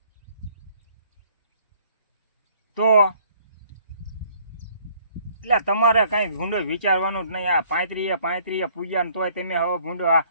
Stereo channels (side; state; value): both; inverted; correlation -0.60